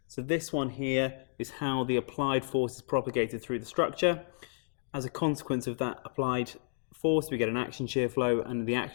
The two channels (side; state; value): right; silent; digital silence